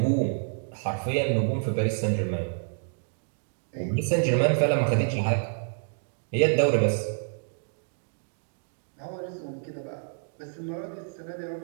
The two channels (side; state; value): left; silent; digital silence